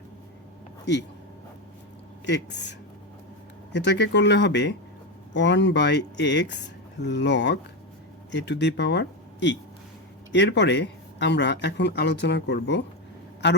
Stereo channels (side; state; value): both; normal; correlation 0.12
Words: E x. এটাকে করলে হবে 1/x log A to the পাওয়ার ই। এরপরে আমরা এখন আলোচনা করব